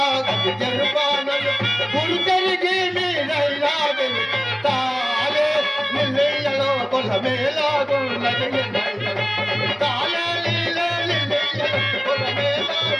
గది ఎరుపానలు గురు తిరిగి మీరైనా తాలే నిలయలో కులమేలాగున్నది తాలే నిలయలో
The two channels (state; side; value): identical; both; correlation 1.00